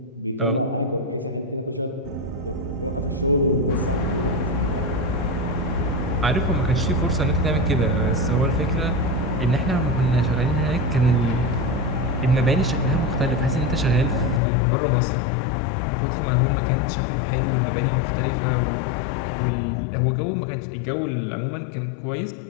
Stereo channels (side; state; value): right; drops out; at 14.4 s